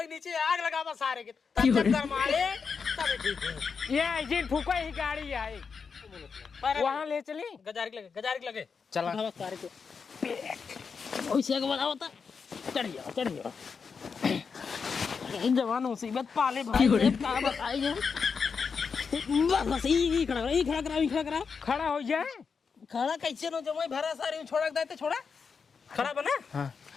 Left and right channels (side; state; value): right; quieter; 5.6 dB